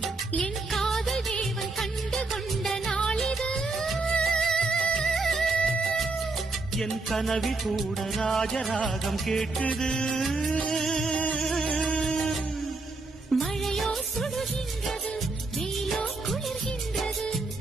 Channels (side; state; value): left; quieter; 3.5 dB